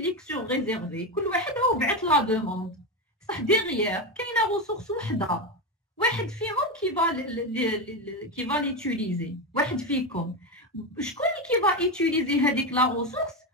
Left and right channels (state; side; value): normal; both; correlation 0.14